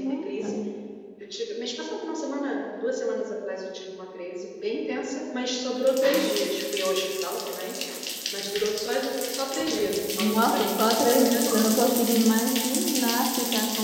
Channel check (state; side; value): identical; both; correlation 1.00